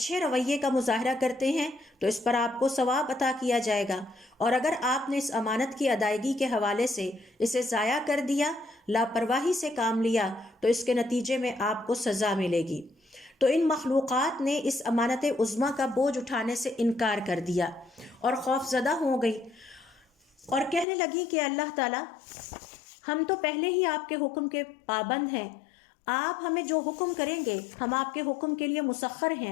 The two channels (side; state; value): right; drops out; at 20.9 s